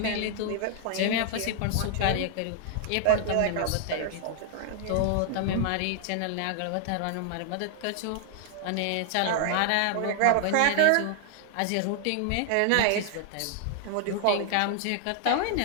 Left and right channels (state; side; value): different; both; correlation 0.00